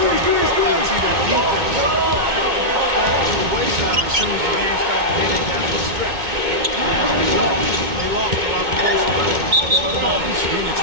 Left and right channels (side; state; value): left; late; 2.2 ms